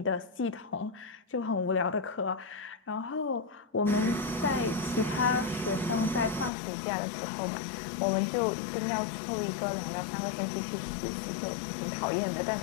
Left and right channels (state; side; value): drops out; right; at 6.5 s